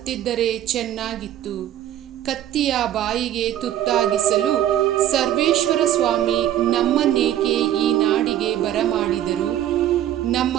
ಚೆನ್ನಾಗಿತ್ತು. ಕತ್ತಿಯ ಬಾಯಿಗೆ ತುತ್ತಾಗಿಸಲು ಸರ್ವೇಶ್ವರ ಸ್ವಾಮಿ ನಮ್ಮನ್ನೇಕೆ ಈ ನಾಡಿಗೆ ಬರಮಾಡಿದರು? ನಮ್ಮ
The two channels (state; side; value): quieter; left; 11.9 dB